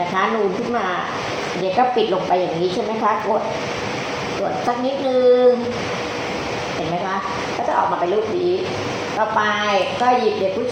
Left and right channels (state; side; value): identical; both; correlation 1.00